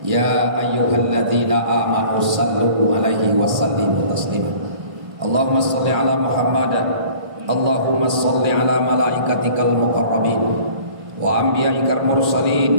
ya ayyuhalladzina amanu sallu 'alaihi wa sallimu taslima. Allahumma shalli 'ala Muhammad, Allahumma shalli 'ala malaikatikal muqarrabin wa anbiya'ikal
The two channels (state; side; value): late; left; 1.5 ms